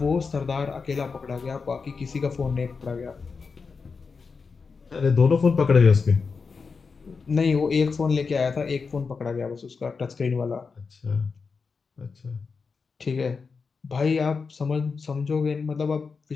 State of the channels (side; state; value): right; quieter; 5.0 dB